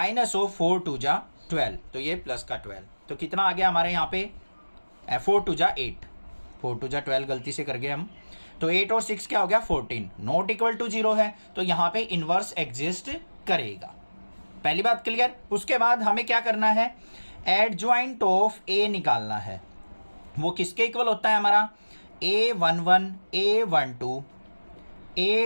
ऑफ 4 2 जा 12, तो ये प्लस का 12, तो कितना आ गया हमारे यहाँ पे 4 2 जा 8, 4 2 जा 12 गलती से कर गए हम, तो 8 और 6 क्या हो गया 14, नॉट इक्वल टू 0 है, तो यहाँ पे इनवर्स एग्जिस्ट करेगा। पहली बात क्लियर। उसके बाद हमें क्या करना है, एडजॉइंट ऑफ ए निकालना है। वो किसके इक्वल होता है हमारा, A11 A12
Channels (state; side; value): inverted; both; correlation -1.00